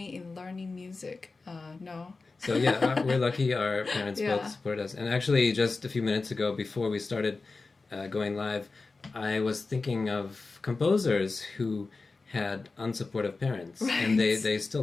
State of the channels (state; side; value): quieter; right; 3.9 dB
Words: in learning music? No. So yeah, we're lucky our parents both support us. And actually, just a few minutes ago, before we started going live, I was thinking of composers who had unsupportive parents, and they still